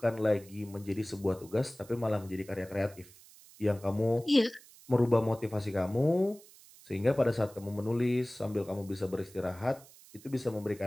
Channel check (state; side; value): noise; right; hiss, 22 dB below the sound